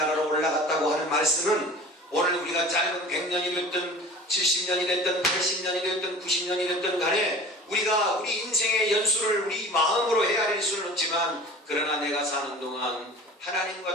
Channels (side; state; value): both; normal; correlation 0.41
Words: 올라갔다고 하는 말씀은 오늘 우리가 짧은 100년이 됐든 70년이 됐든 80년이 됐든 90년이 됐든 간에 우리가 우리 인생의 연수를 우리 마음으로 헤아릴 수는 없지만 그러나 내가 사는 동안